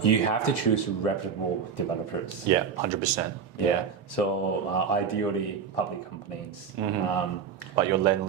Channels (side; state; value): left; quieter; 6.8 dB